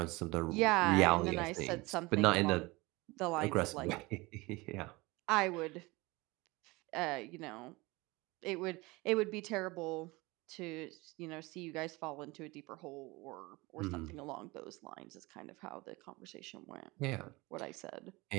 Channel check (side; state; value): left; quieter; 23.2 dB